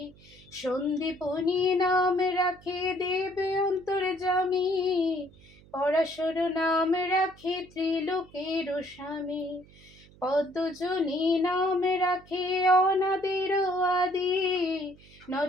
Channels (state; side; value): noise; right; hum, 25 dB below the sound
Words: সন্দীপনী নাম রাখে দেব অন্তর্যামী, পরাশর নাম রাখে ত্রিলোকের স্বামী, পদ্মজনী নাম রাখে অনাদের আদি,